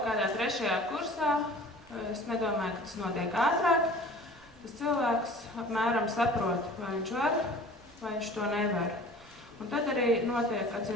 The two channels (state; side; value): noise; right; rumble, 26 dB below the sound